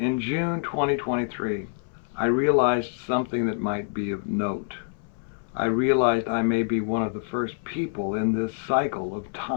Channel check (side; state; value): right; silent; 61 dB below the other